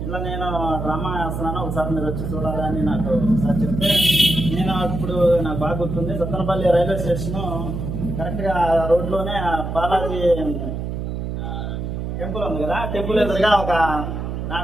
ఇలా నేను డ్రామా వేస్తున్నాను, ఒకసారి మీరు వచ్చి చూడాలని నాకు ఒకసారి చెప్తే, నేను ఇప్పుడు నాకు బాగా గుర్తుంది, సత్తనపల్లి రైల్వే స్టేషను కరెక్ట్గా రోడ్లోనే బాలాజీ టెంపుల్ ఉంది కదా, టెంపుల్ ఎదురుగా ఒక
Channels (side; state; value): right; noise; hum, 4 dB below the sound